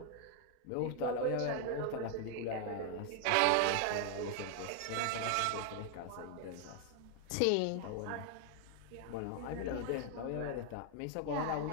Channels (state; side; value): different; both; correlation 0.00